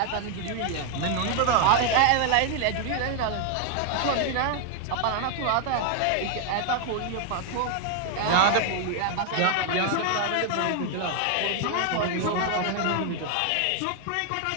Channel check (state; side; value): different; both; correlation 0.00